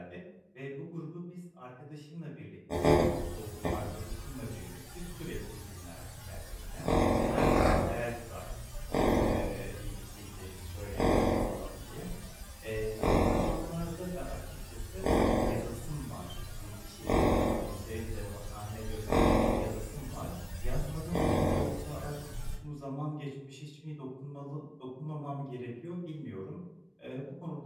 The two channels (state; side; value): identical; both; correlation 1.00